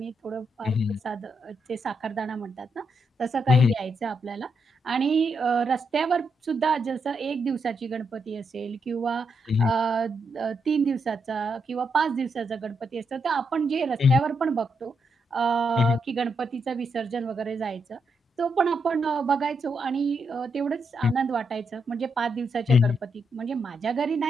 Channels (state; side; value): normal; both; correlation 0.81